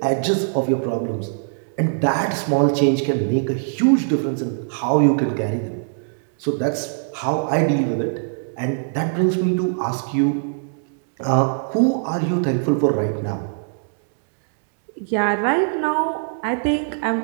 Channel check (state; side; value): silent; left; digital silence